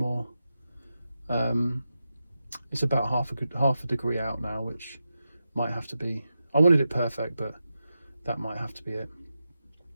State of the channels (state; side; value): inverted; both; correlation -0.90